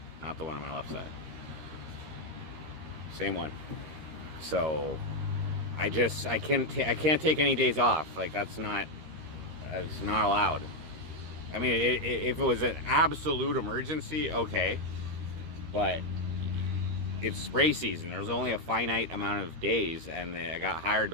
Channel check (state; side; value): late; left; 13 ms